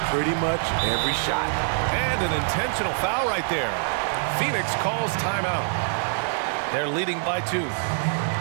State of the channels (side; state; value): left; silent; 62 dB below the other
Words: pretty much every shot. And an intentional foul right there. Phoenix calls timeout. They're leading by 2.